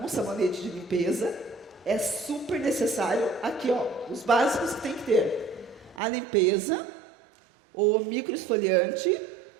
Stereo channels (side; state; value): left; drops out; at 6.0 s